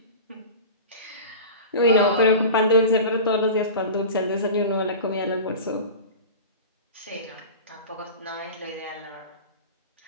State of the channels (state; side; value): inverted; both; correlation -0.32